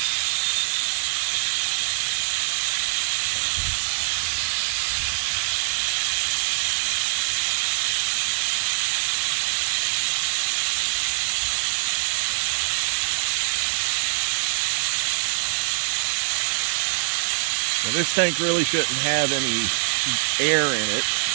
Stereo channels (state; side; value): silent; left; 63 dB below the other